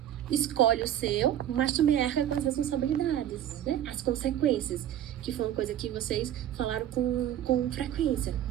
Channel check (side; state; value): left; quieter; 11.3 dB